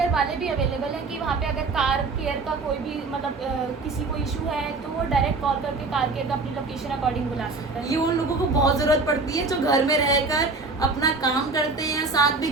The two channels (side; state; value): left; quieter; 3.7 dB